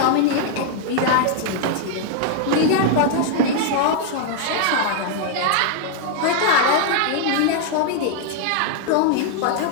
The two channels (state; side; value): different; both; correlation 0.00